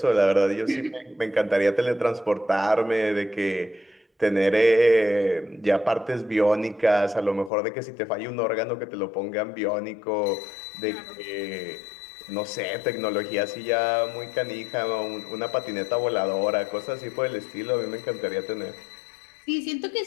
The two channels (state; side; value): drops out; right; at 7.5 s